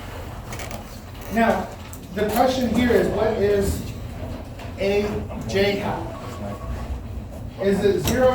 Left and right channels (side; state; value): both; identical; correlation 1.00